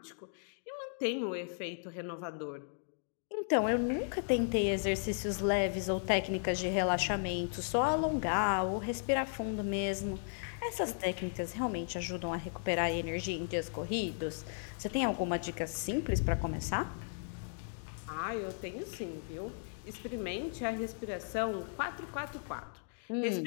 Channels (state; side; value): silent; right; digital silence